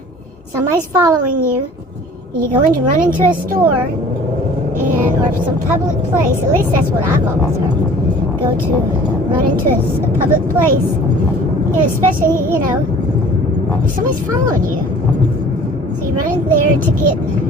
somebody's following you, and you go in to run into a store, or some public place. At least that's what I've always heard. Go to run into a public place, and especially, you know, if somebody's following you. So you run in there to get,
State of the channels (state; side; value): normal; both; correlation 0.48